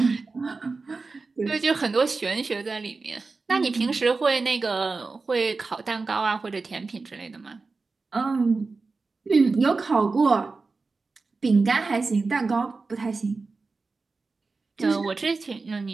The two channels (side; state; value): left; quieter; 4.0 dB